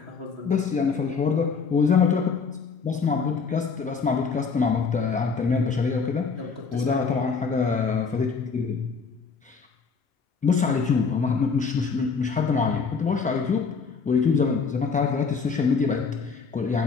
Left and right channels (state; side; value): quieter; right; 5.3 dB